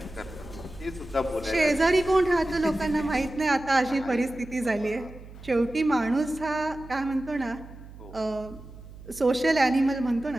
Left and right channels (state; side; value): noise; right; hum, 17 dB below the sound